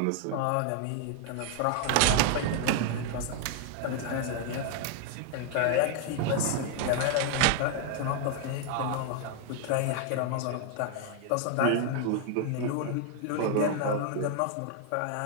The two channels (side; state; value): both; different; correlation 0.00